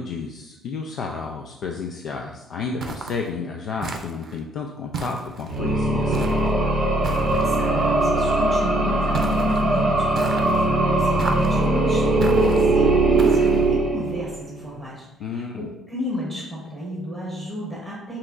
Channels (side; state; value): both; normal; correlation 0.66